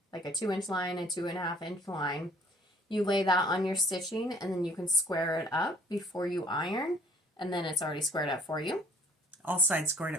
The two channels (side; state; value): both; normal; correlation 0.57